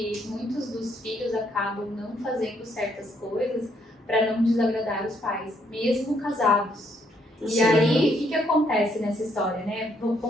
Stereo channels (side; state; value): both; normal; correlation 0.71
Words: muitos dos filhos acabam não fazendo certas coisas para não desagradar os pais, mesmo casados. Sim. E aí, o que acontece nessa história, né?